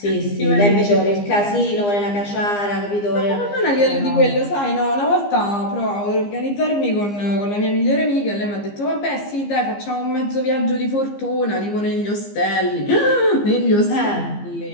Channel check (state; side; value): late; right; 15 ms